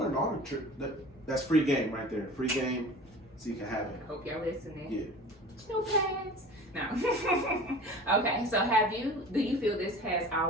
all the trick. That's free game right there. Free game, so you can have it. Hope y'all listening. Yeah. No pads. No. Okay, so do you feel this has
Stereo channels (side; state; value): both; normal; correlation 0.39